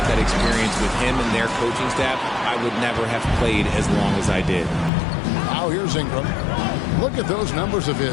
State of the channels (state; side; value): drops out; right; at 4.9 s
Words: that experience with him and their coaching staff, I would never have played as long as I did. Now here's Ingram. Look at those numbers of